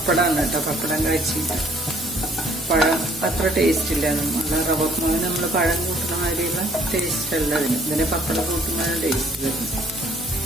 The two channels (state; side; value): normal; both; correlation 0.60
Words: കേട്ടോ. പപ്പടം കാച്ചിട്ട്. പഴം അത്ര ടേസ്റ്റ് ഇല്ല. നല്ല റവമാവ് നമ്മൾ പഴം കൂട്ടുന്ന മാതിരിയുള്ള ടേസ്റ്റ് അല്ല അതിന്. ഇതിന് പപ്പടം കൂട്ടുന്നതാണ് ടേസ്റ്റ് വരുന്നത്.